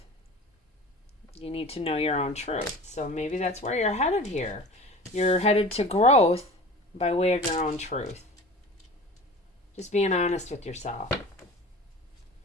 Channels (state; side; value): normal; both; correlation 0.38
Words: You need to know your own truth. So maybe that's where you're headed here. You're headed to growth by way of your own truth. Just being honest with yourself.